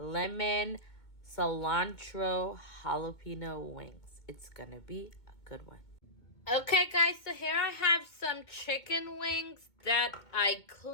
cilantro jalapeno wings. It's going to be a good one. Okay guys, so here I have some chicken wings that I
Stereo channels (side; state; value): right; late; 2.2 ms